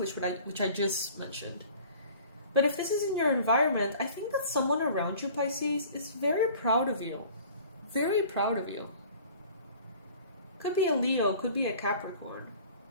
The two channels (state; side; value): inverted; both; correlation -0.47